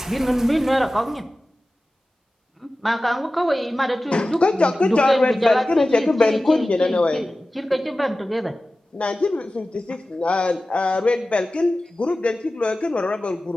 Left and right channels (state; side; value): normal; both; correlation 0.96